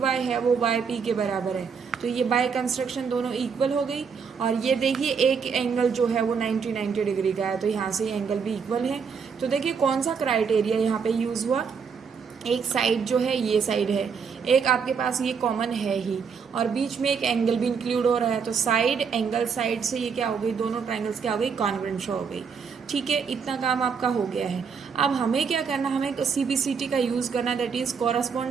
है वो वाई पी के बराबर है, तो ये बाय कंस्ट्रक्शन दोनों इक्वल हो गई। और ये देखिए एक एंगल जो है वो 90 डिग्री का है, तो यहाँ से ये एंगल भी इक्वल है। तो देखिए कौन सा क्राइटेरिया यहाँ पे यूज़ हुआ, एक साइड जो है ये साइड है, एक आपके पास ये कॉमन है ही, और बीच में एक एंगल भी इंक्लूड हो रहा है, तो साइड एंगल साइड से ये क्या हो गई, दोनों ट्राइंगल्स क्या हो गई, कॉन्ग्रुएंट शो हो गई। ठीक है, इतना काम आपका हो गया है। अब हमें क्या करना, हमें सीबीसीटी का यूज़ करना, that is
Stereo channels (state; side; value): quieter; left; 6.1 dB